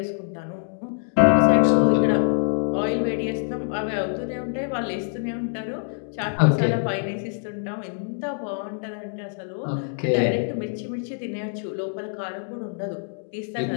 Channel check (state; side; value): silent; right; digital silence